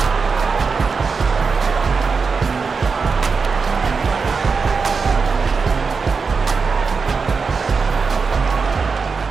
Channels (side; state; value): left; quieter; 5.0 dB